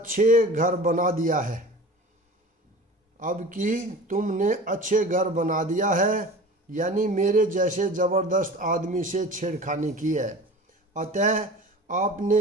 घर बना दिया है, यानी मेरे जैसे जबरदस्त आदमी से छेड़खानी की है। अतः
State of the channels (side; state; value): both; normal; correlation 0.38